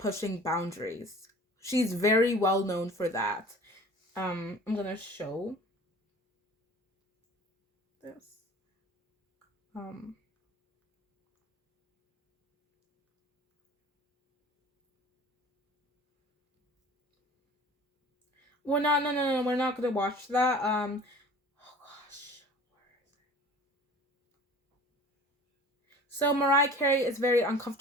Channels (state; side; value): normal; both; correlation 0.44